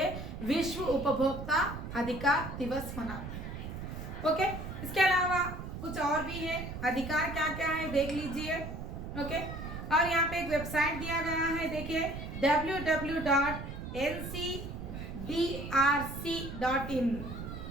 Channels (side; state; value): right; noise; rumble, 8 dB below the sound